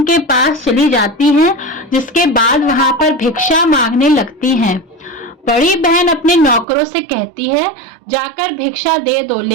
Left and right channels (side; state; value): left; drops out; at 6.7 s